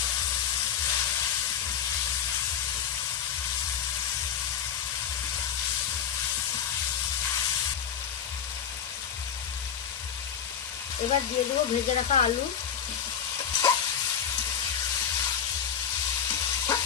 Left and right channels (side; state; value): right; quieter; 8.6 dB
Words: এবার দিয়ে দেবো ভেজে রাখা আলু।